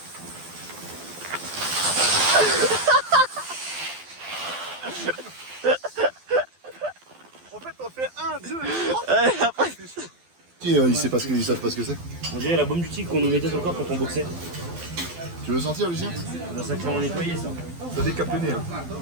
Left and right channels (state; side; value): late; left; 12 ms